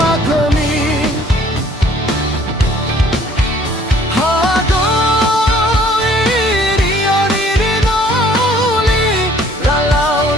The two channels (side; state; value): both; normal; correlation 0.57